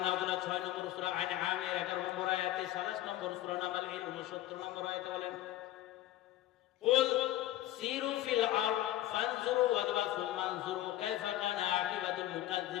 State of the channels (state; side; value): quieter; right; 14.3 dB